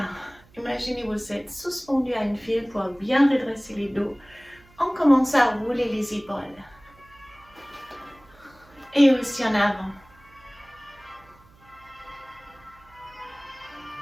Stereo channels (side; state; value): right; noise; hum, 27 dB below the sound